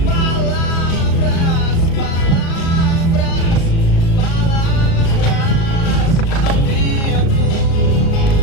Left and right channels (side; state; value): right; late; 36 ms